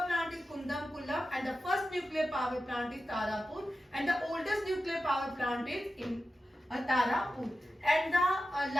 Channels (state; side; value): normal; both; correlation 0.92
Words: plant is Kudankulam and the first nuclear power plant is Tarapur and the oldest nuclear power plant is in Tarapur and the